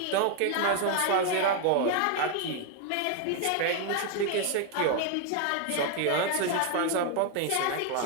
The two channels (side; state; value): both; different; correlation 0.00